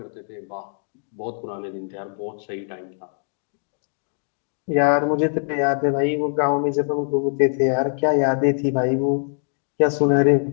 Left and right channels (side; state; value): right; silent; 64 dB below the other